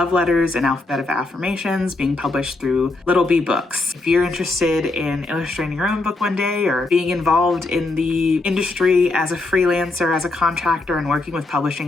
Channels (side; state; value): right; quieter; 3.2 dB